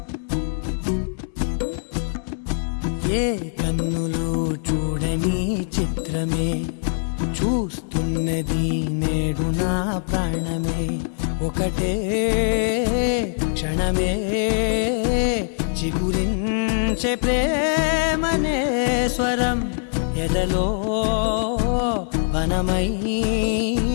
ఏ కన్నులు చూడని చిత్రమే చూస్తున్నది నేడు నా ప్రాణమే ఒకటే క్షణమే చిగురించే ప్రేమనే స్వరం ఎదలో వనమై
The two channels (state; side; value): silent; right; 64 dB below the other